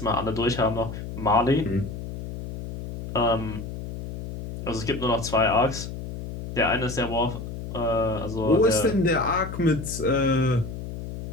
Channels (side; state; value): left; noise; hum, 8 dB below the sound